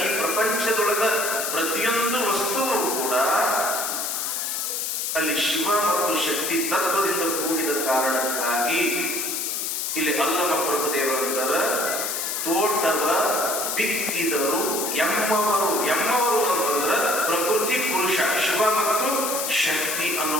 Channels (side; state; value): left; noise; hiss, 2 dB below the sound